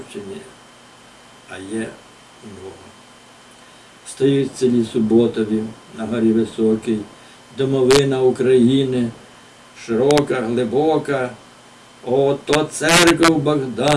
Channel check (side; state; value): both; identical; correlation 1.00